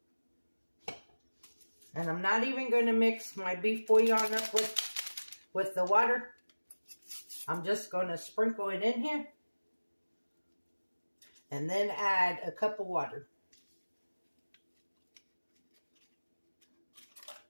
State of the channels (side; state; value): both; inverted; correlation -1.00